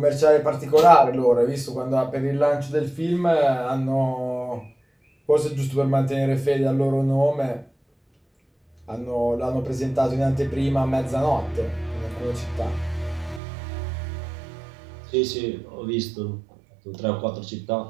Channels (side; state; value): left; drops out; at 13.4 s